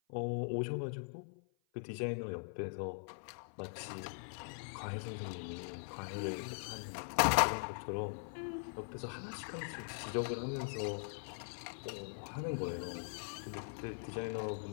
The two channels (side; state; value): right; silent; 50 dB below the other